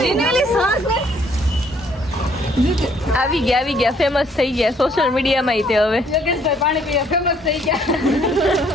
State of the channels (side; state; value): both; normal; correlation 0.64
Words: આવી ગયા ફેમસ થઈ ગયા સોશિયલ મીડિયામાં તે હવે યોગેશભાઈ પાણી પીવા ફેમસ થઈ ગયા